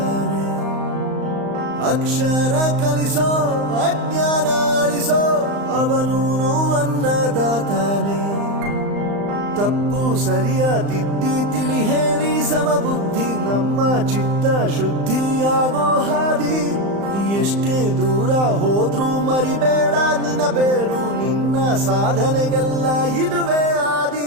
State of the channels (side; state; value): left; late; 35 ms